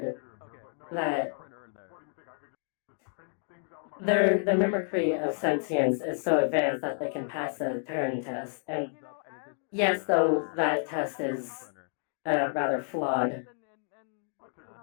that the mimicry of sentience is so advanced that they can pass a Turing test. And yes, though that test is rather flawed,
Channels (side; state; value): right; silent; 58 dB below the other